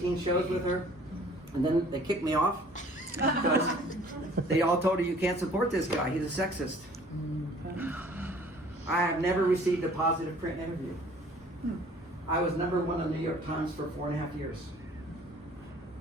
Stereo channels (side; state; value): both; normal; correlation 0.53